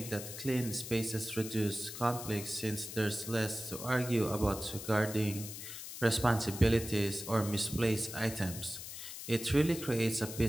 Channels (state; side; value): noise; left; hiss, 9 dB below the sound